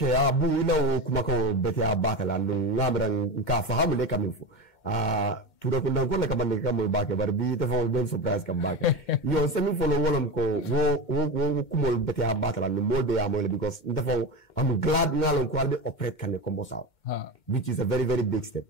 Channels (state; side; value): late; right; 2.2 ms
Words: bu ila kuma ko bete abata ndu ngamran ka fahamu le kamifu tura ko ndangol ka bande kam baake bar bi dafa ben surprise kam baake yo semi follow wolom ko wo kumol bete abata ndu molde ya mole because dafa I'm glad ngalon ko albe operate kan combo saw which is a very very big step